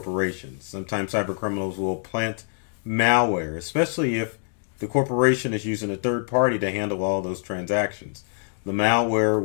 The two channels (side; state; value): right; silent; digital silence